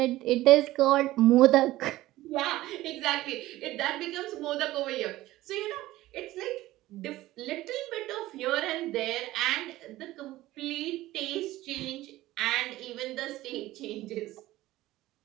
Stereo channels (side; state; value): left; quieter; 16.5 dB